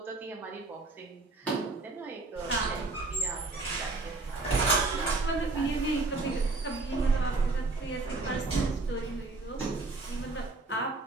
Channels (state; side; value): quieter; left; 3.4 dB